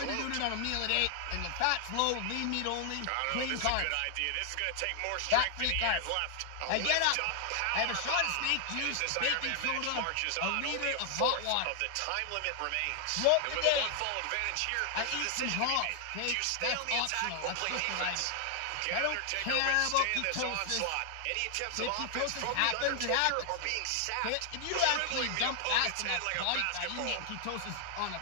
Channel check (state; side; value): different; both; correlation 0.00